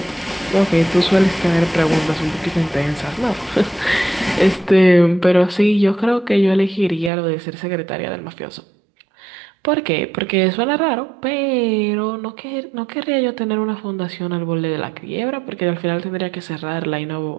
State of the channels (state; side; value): drops out; left; at 7.1 s